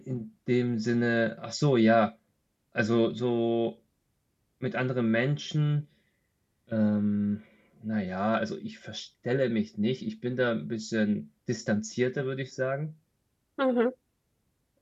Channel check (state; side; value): identical; both; correlation 1.00